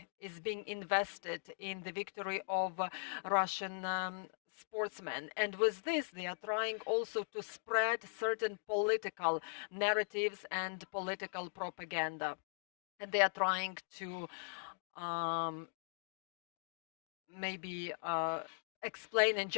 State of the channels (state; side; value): silent; right; digital silence